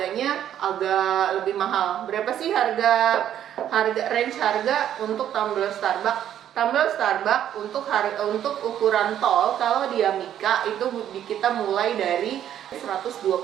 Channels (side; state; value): left; quieter; 10.6 dB